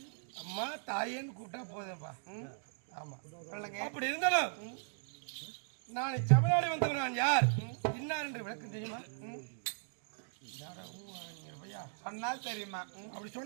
அம்மா தாயேன்னு கூப்பிட்டா போதும்பா. ஆமா சொல்லுங்க. அப்படி இருந்தாலும் நான் தமிழ்நாடு வந்தவன். நான் யார் இன்னார் என்று விளக்கம் தெரியுமா? சொன்னால் தெரியுமா? அப்படி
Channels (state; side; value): silent; left; digital silence